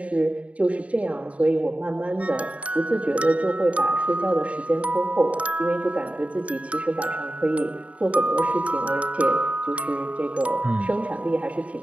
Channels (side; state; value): left; late; 0.066 ms